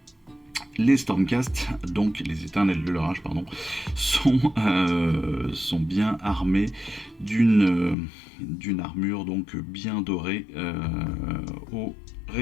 les Stormcast, donc les éternels de l'orage, pardon, sont bien armés d'une armure donc bien dorée au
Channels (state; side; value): drops out; right; at 8.0 s